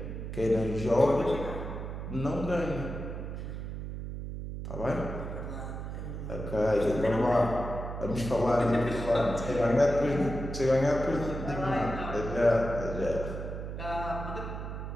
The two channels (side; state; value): right; noise; hum, 6 dB below the sound